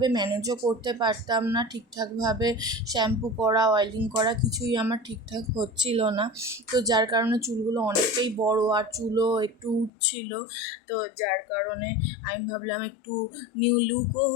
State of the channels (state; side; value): drops out; right; at 9.9 s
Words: ম্যানেজও করতে পারতাম না, ঠিকঠাকভাবে শ্যাম্পু করা, অয়েলিং করা কিছুই আমার ঠিকঠাক হচ্ছিল না। তো যার কারণে চুলগুলো অনেকটাই বড় আর চুলও একটু উঠছিল। তো যার কারণে আমি ভাবলাম একটু নিউ লুকও